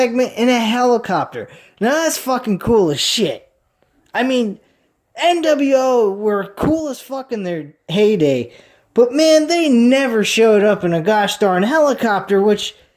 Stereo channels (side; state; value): both; identical; correlation 1.00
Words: in a helicopter. Now that's fucking cool as shit. I mean, NWO were cool as fuck in their heyday, but man, they never showed up in a gosh darn helicopter, which